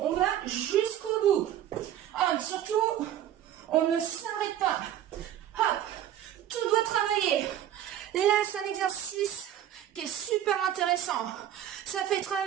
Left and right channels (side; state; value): left; quieter; 11.3 dB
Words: exercice qui est super intéressant. Ça fait